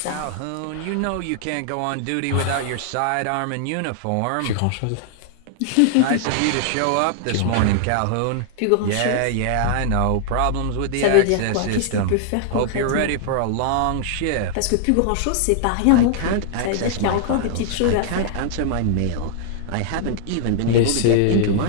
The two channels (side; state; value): both; different; correlation -0.01